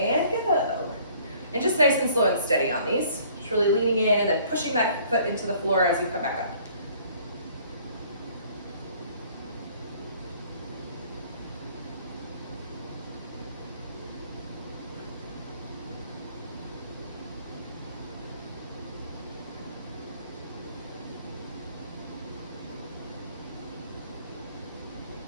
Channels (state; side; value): inverted; both; correlation -0.57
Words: go. And just nice and slow and steady on these. Just really leaning in and then pushing that foot into the floor as you come back up.